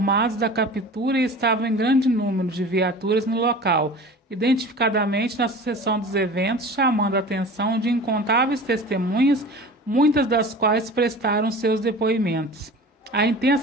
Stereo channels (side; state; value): both; normal; correlation 0.38